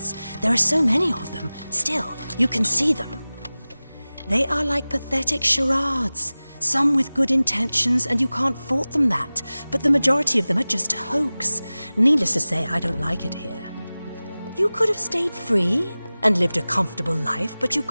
There are so many of them. Still, you can see them. They are like pathetic charades. Some with good intentions, and you can't fault them that. But the majority of them are just a hoax. Needless to say, I don't like it here. You could have stayed free and lived a comfortable life, but you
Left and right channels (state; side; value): inverted; both; correlation -0.98